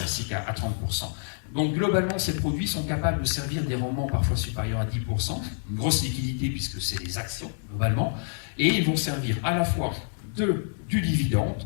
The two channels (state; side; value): silent; right; 60 dB below the other